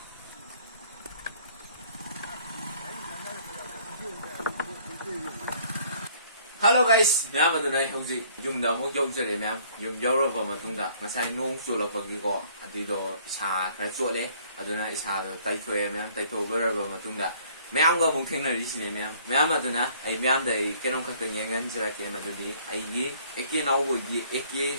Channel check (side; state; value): both; inverted; correlation -0.58